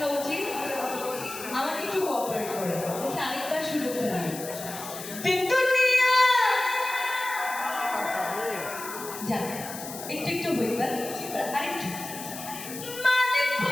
উচিত। আমাকে একটু কোঅপারেট করে আরেকবার সুযোগটা নিন। যান একটু একটু হইতাম আরেকটু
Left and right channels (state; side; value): noise; left; hiss, 10 dB below the sound